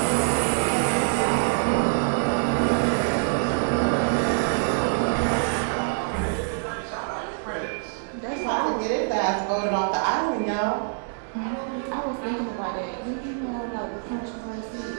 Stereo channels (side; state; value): left; silent; digital silence